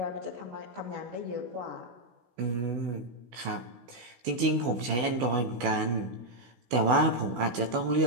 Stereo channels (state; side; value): late; left; 16 ms